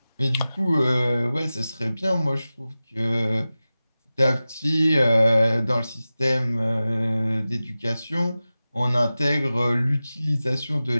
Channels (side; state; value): both; inverted; correlation -0.95